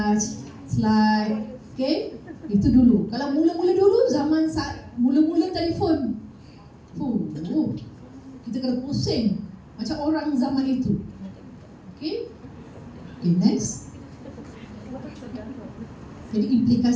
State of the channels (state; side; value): identical; both; correlation 1.00